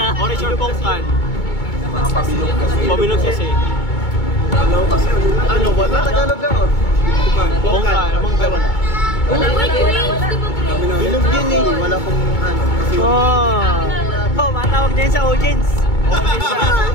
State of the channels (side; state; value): right; late; 2.2 ms